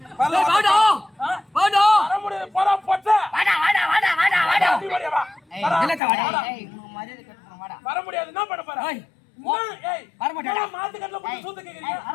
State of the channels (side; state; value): right; drops out; at 6.0 s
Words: வர முடியாது. போடா பொட்ட. வர முடியாது. என்ன பண்ண போற? மாத்துக்கட்டல பத்தி சூத்து கேக்குறீங்க?